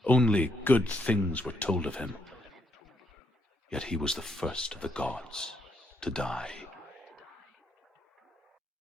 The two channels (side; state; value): both; normal; correlation 0.76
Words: Only good things were told of him. Yet he was the first of the gods to die.